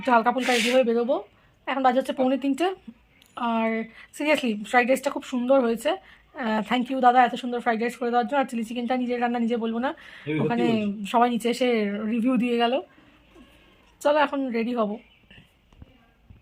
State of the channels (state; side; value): identical; both; correlation 1.00